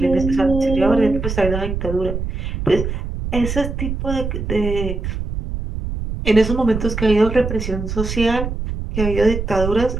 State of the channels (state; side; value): noise; right; rumble, 4 dB below the sound